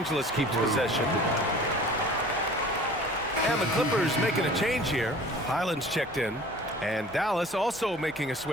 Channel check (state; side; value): normal; both; correlation 0.45